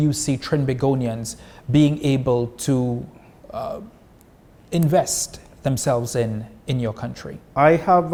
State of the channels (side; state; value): both; identical; correlation 1.00